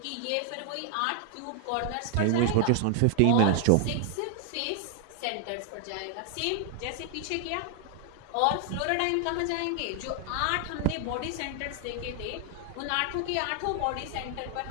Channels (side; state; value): both; different; correlation 0.00